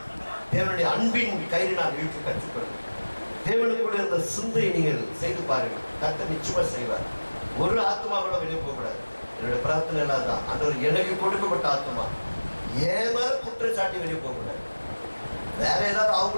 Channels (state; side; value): inverted; both; correlation -1.00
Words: தேவனுடைய அன்பின் கயிறினால் இழுக்க கற்றுக்கொள்ளுங்க. தேவனுக்குள்ள இருந்த சிந்தையை நீங்கள் செய்து பாருங்கள். கர்த்தர் நிச்சயமா செய்வார். ஒரு ஆத்மா கூட வெளியே போகக்கூடாது. என்னுடைய பிரார்த்தனை எல்லாம் தான், ஆண்டவர் எனக்கு கொடுக்கப்பட்ட ஆத்மா ஏன் மேல குற்றச்சாட்டி வெளியே போகக்கூடாது. வேற ஏதாவது